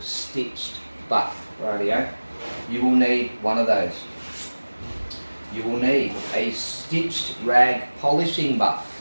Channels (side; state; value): both; inverted; correlation -1.00